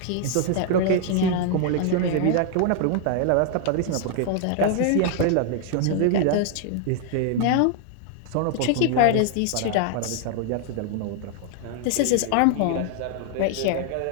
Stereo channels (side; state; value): both; different; correlation 0.00